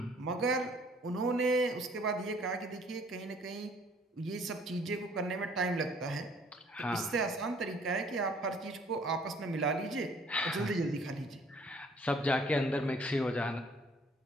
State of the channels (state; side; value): normal; both; correlation 0.58